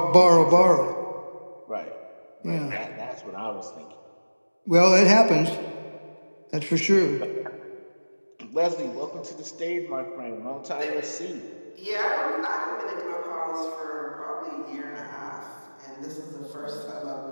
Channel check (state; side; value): inverted; both; correlation -1.00